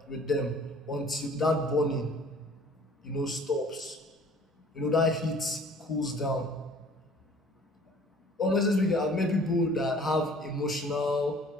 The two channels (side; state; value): both; normal; correlation 0.51